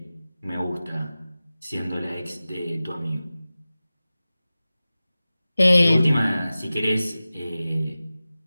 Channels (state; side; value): inverted; both; correlation -0.96